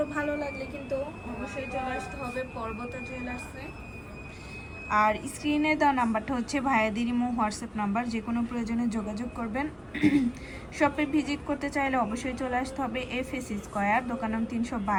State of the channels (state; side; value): identical; both; correlation 1.00